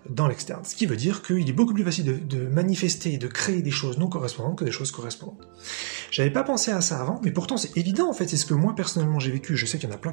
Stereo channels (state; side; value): silent; left; digital silence